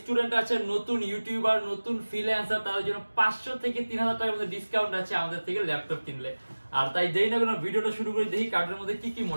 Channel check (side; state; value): both; inverted; correlation -1.00